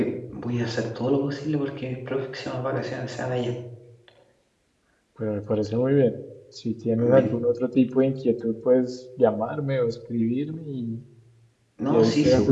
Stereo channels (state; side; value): identical; both; correlation 1.00